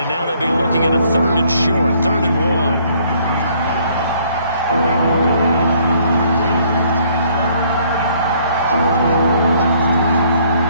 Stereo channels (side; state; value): both; inverted; correlation -0.63